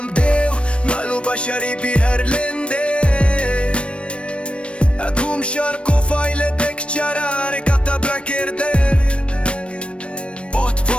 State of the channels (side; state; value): right; late; 0.060 ms